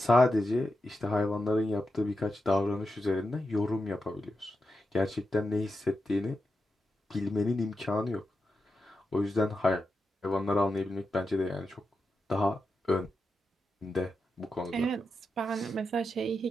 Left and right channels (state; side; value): normal; both; correlation 0.88